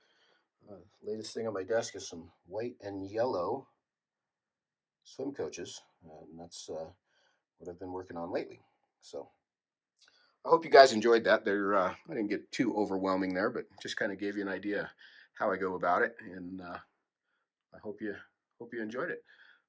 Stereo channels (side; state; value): both; identical; correlation 1.00